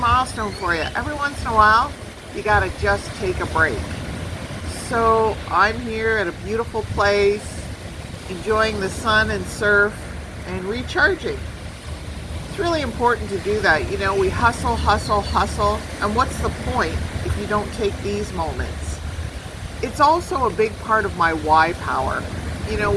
for you. Every once in a while, you got to just take a break. So I'm here at a beautiful place, enjoying the sun and surf and recharging. It's really important to do that. You know, we hustle, and what's the point if you don't take these moments? It's also a big part of my why power. You know,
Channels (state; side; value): identical; both; correlation 1.00